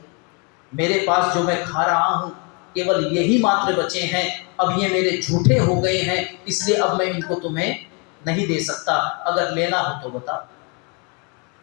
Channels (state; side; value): quieter; right; 33.5 dB